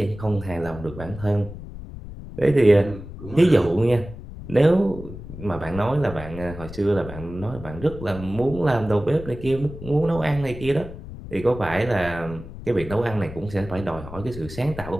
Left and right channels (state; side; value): noise; left; rumble, 13 dB below the sound